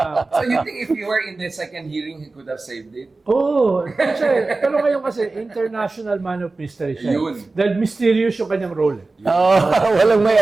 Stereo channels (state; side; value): quieter; left; 3.5 dB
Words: you think if you were in the second hearing, he could have saved it? Oo. Pero ngayon kasi, international man of mystery siya. Yun. Dahil mysterious yung kanyang role. Walang may